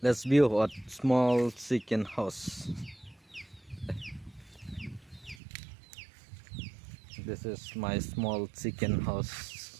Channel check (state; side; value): drops out; left; at 5.4 s